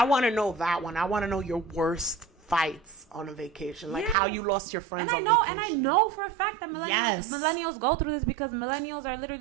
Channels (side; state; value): left; drops out; at 4.2 s